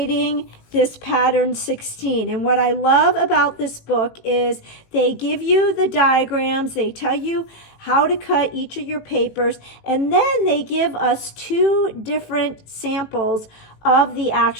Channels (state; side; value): late; right; 18 ms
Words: this pattern 16. And what I love about this book is they give you the diagrams, they tell you how to cut each of your papers, and then they give us 2 different samples of the